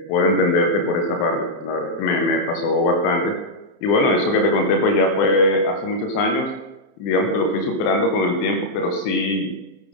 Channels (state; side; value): late; right; 30 ms